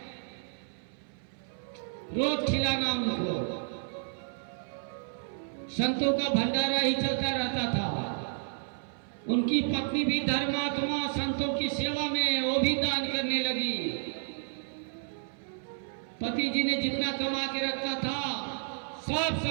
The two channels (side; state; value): left; silent; 57 dB below the other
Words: रोज खिलाना उनको, संतों का भंडारा ही चलता रहता था। उनकी पत्नी भी धर्मात्मा, संतों की सेवा में वो भी दान करने लगी। पति जी ने जितना कमा के रखा था सब